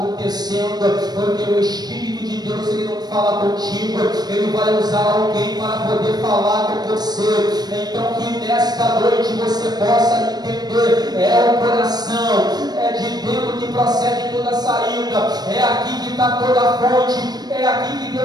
porque o Espírito de Deus, ele não fala contigo, ele vai usar alguém para poder falar com você. Então que nesta noite você possa entender, é o coração, é de dentro que procede toda a saída, é aqui que está toda a fonte, é aqui que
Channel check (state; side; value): late; left; 0.19 ms